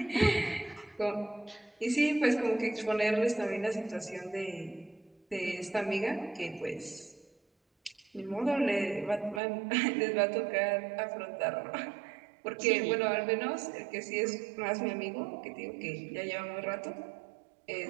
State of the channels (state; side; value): drops out; left; at 9.4 s